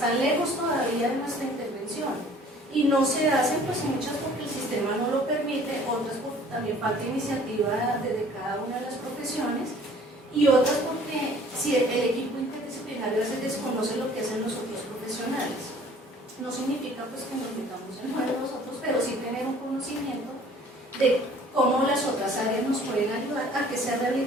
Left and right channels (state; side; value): normal; both; correlation 0.53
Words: lejos todavía de nuestra intervención y no se hacen, pues muchas porque el sistema no lo permite, otras porque también falta iniciativa desde cada una de las profesiones y otras porque si el equipo interdisciplinario a veces desconoce lo que hacen los otros profesionales. No significa pues que nos metamos en uno de nosotros, pero sí tener un conocimiento de cómo las otras áreas nos pueden ayudar a que esa